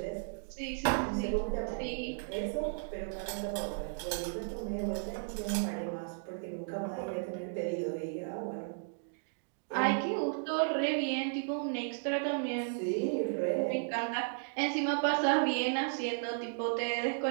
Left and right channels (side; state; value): left; silent; digital silence